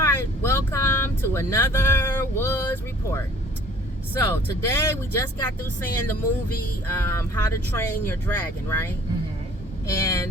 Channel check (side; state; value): both; normal; correlation 0.54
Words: welcome to another Woods Report. So today we just got through seeing the movie How to Train Your Dragon, right? Mm-hmm.